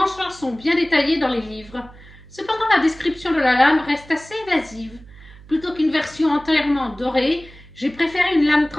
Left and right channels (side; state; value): right; noise; hum, 21 dB below the sound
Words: sont bien détaillés dans les livres. Cependant, la description de la lame reste assez évasive. Plutôt qu'une version entièrement dorée, j'ai préféré une lame